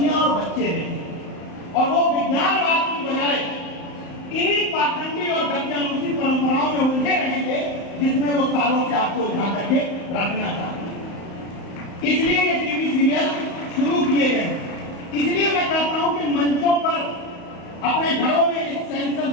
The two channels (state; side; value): late; right; 35 ms